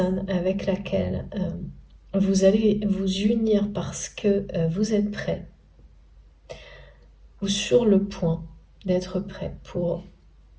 avec laquelle vous allez vous unir parce que vous êtes prêt, ou sur le point d'être prêt pour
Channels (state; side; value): identical; both; correlation 1.00